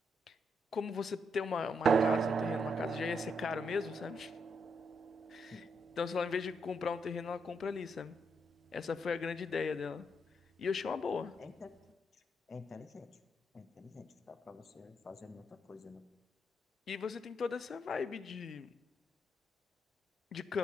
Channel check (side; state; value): both; normal; correlation 0.79